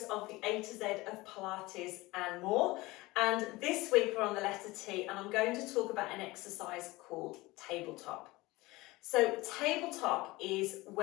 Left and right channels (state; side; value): quieter; right; 20.9 dB